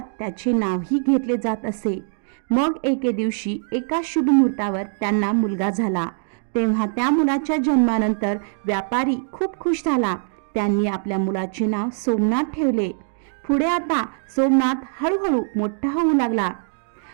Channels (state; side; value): silent; left; digital silence